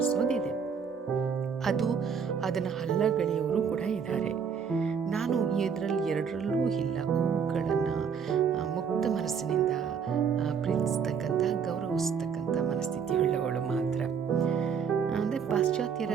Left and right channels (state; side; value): quieter; left; 6.7 dB